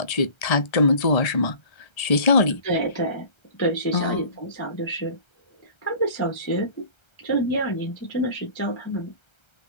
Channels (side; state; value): right; late; 1.3 ms